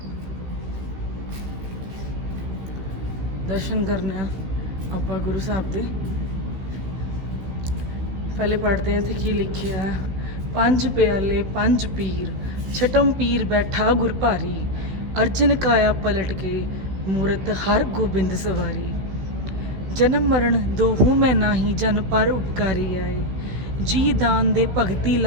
ਦਰਸ਼ਨ ਕਰਨੇ ਆ ਆਪਾਂ ਗੁਰੂ ਸਾਹਿਬ ਦੇ। ਪਹਿਲੇ ਪੜ੍ਹਦੇ ਹਾਂ ਇੱਥੇ ਕੀ ਲਿਖਿਆ ਹੈ। 5 ਪਿਆਲੇ 5 ਪੀਰ, ਛਟਮ ਪੀਰ ਬੈਠਾ ਗੁਰ ਭਾਰੀ, ਅਰਜਨ ਕਾਇਆ ਪਲਟ ਕੇ ਮੂਰਤ ਹਰ ਗੋਬਿੰਦ ਸਵਾਰੀ, ਜਨਮ ਮਰਨ ਦੋਹੂ ਮੈਂ ਨਾਹੀ, ਜਨ ਪਰ ਉਪਕਾਰੀ ਆਏ, ਜੀ ਦਾਨ ਦੇ ਭਗਤੀ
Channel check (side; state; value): left; late; 16 ms